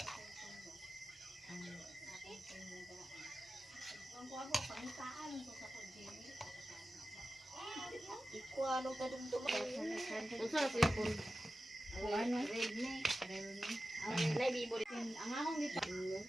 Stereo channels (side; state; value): both; normal; correlation 0.93